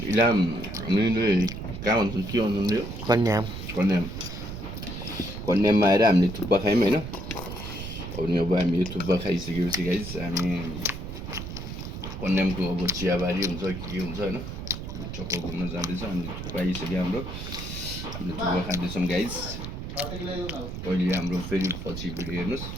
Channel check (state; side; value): noise; right; rumble, 7 dB below the sound